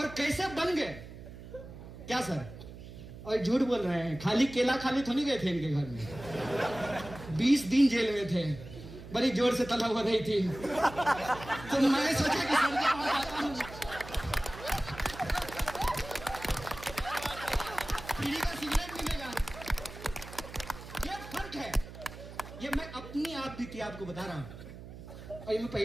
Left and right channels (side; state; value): right; noise; hum, 14 dB below the sound